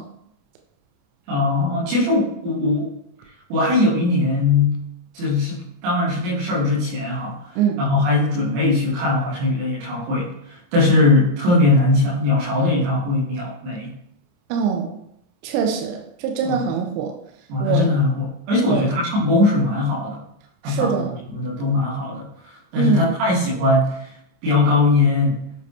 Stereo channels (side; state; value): left; late; 29 ms